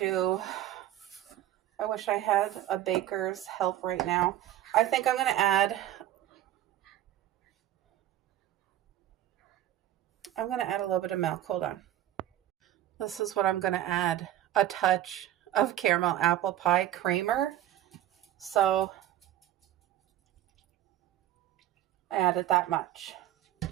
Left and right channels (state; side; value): quieter; left; 12.8 dB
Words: I wish I had a baker's help right now. I think I'm going to add a little bit of milk. Hold on. This is what I'm going to add. A touch of caramel apple pie creamer. So I added that much,